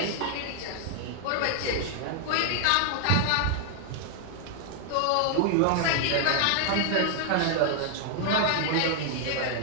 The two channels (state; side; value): different; both; correlation 0.00